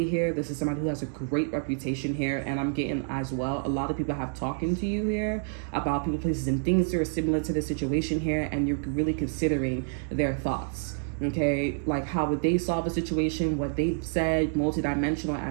here. This is somebody who has a great reputation here. And I'm getting as well, a lot of people have talking to you here about people, places, and things that are similar to the situation here. And you're really considering their thoughts. Okay, how would they solve a situation, what they said, multidimensional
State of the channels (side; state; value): left; silent; digital silence